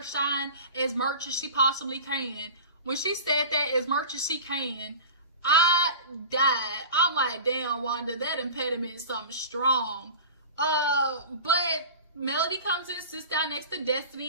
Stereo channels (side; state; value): both; inverted; correlation -0.34